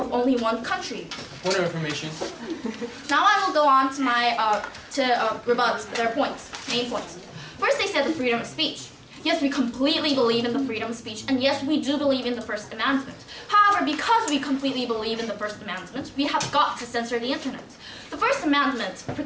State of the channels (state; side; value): identical; both; correlation 1.00